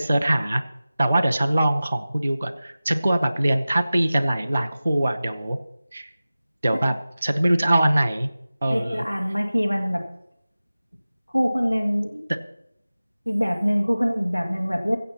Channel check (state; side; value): inverted; both; correlation -0.96